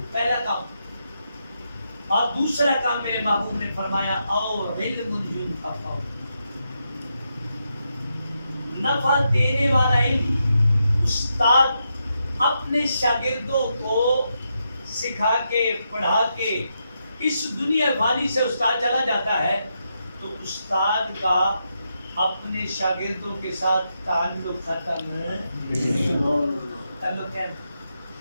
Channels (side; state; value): both; inverted; correlation -0.83